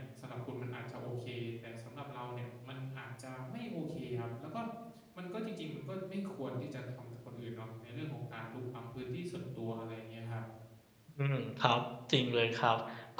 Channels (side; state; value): both; identical; correlation 1.00